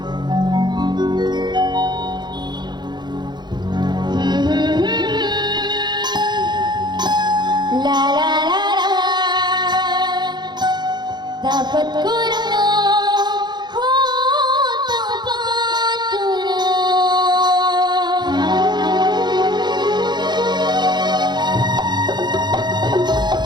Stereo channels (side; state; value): left; late; 0.21 ms